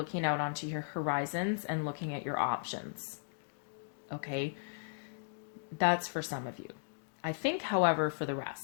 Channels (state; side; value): silent; right; digital silence